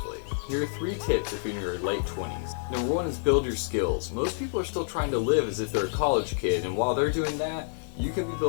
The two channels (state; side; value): silent; right; digital silence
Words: Here are 3 tips if you're in your late 20s. Number 1 is build your skills. Most people are still trying to live as if they're a college kid, and while they're doing that, you can be